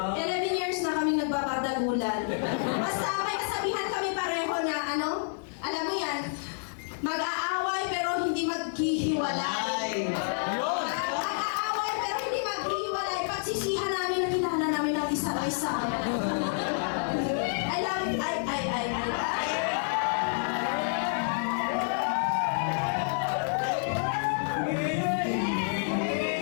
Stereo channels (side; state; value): right; silent; 59 dB below the other